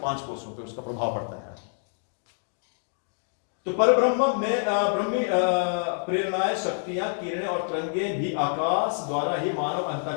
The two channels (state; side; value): silent; right; digital silence